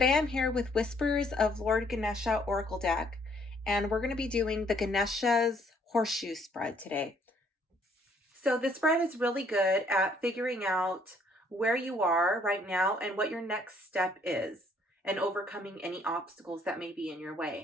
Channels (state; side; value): normal; both; correlation 0.65